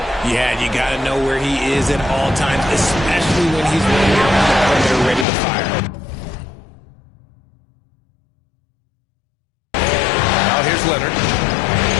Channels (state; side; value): drops out; right; at 5.2 s